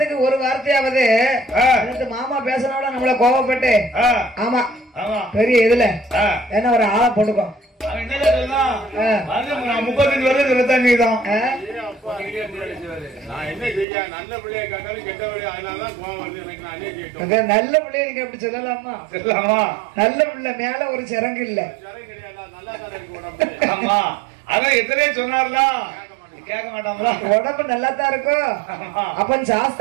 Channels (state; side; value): drops out; left; at 13.9 s